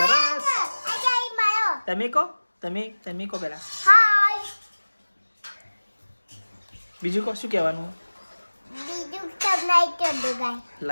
તમે કહો પેલા. બીજું કહો, શું કહેવાનું?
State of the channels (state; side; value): inverted; both; correlation -1.00